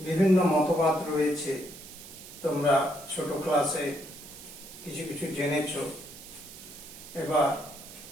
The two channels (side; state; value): right; noise; hiss, 16 dB below the sound